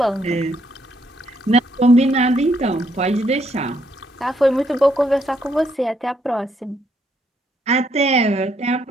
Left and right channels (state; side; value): normal; both; correlation 0.73